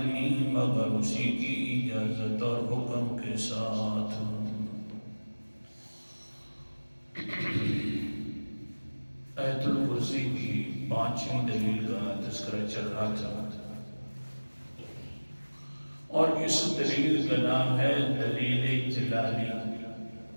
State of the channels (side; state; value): both; inverted; correlation -1.00